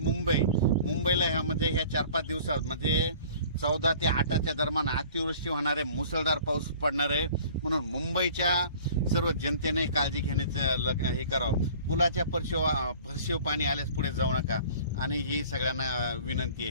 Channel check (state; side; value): inverted; both; correlation -0.48